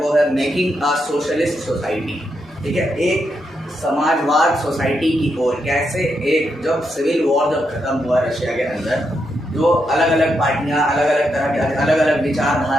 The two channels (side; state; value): both; normal; correlation 0.82